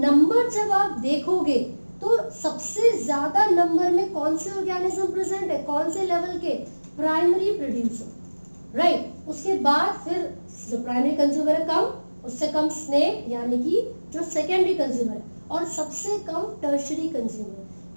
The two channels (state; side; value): inverted; both; correlation -1.00